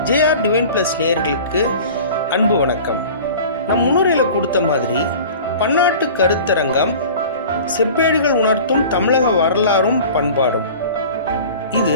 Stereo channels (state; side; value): inverted; both; correlation -0.41